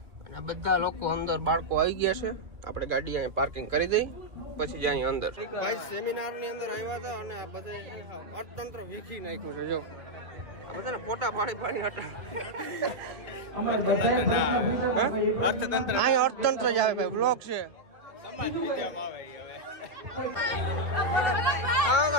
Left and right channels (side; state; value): left; late; 1.9 ms